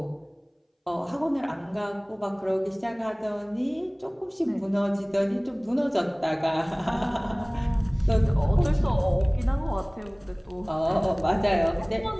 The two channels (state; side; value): identical; both; correlation 1.00